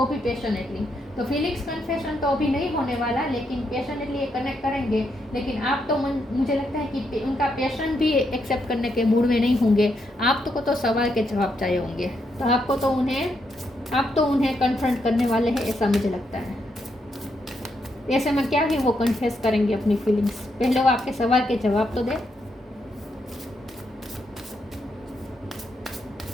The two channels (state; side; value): normal; both; correlation 0.79